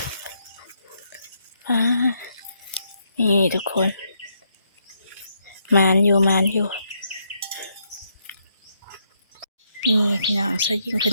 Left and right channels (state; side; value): inverted; both; correlation -0.77